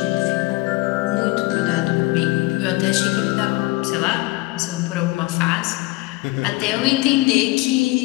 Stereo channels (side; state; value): right; quieter; 21.9 dB